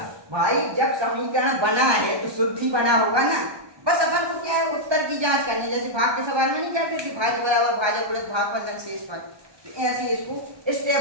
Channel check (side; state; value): left; late; 1.2 ms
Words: भाई जब समीकरण बना है तो शुद्ध ही बना होगा ना, बस अपन को क्या है, उत्तर की जांच करनी है। जैसे भाग के सवाल में नहीं कहते थे, भाज्य बराबर भाजक गुणित भागफल लग शेष पद, तो ऐसे इसको